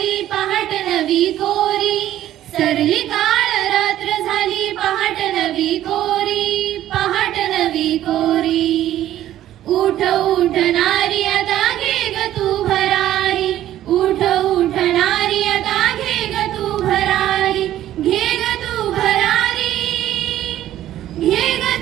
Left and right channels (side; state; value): left; quieter; 12.8 dB